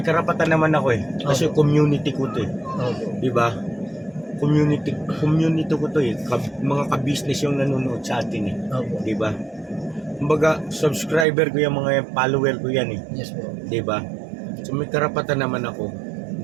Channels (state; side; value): drops out; left; at 11.2 s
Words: karapatan naman ako eh. Kasi community ko to eh. Diba? Community ko to eh. Mga ka-business yung nanonood sa atin eh. Diba? Kumbaga, subscriber ko yung mga follower ko yan eh. Yes po. Diba? So may karapatan naman ako